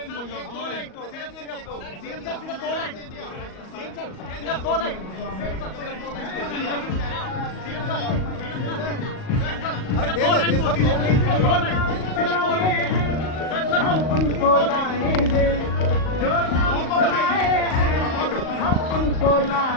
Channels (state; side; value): late; right; 38 ms